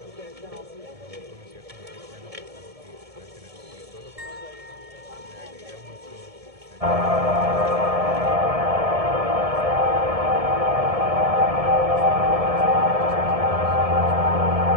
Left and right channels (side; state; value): left; late; 1.7 ms